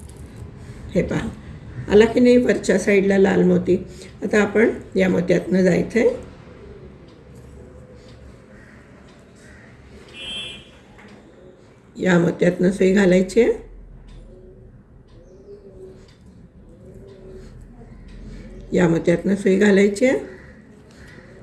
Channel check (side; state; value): both; identical; correlation 1.00